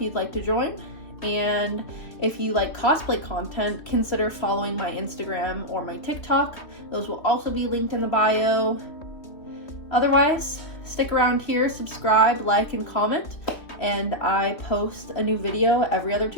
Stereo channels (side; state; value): right; late; 3.2 ms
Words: you'd like to join. And if you like cosplay content, consider following my Instagram or my TikTok. Those will also be linked in the bio. Otherwise, stick around here, subscribe, like, and comment. And I post a new video every other